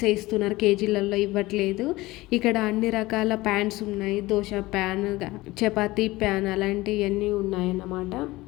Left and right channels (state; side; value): quieter; right; 19.5 dB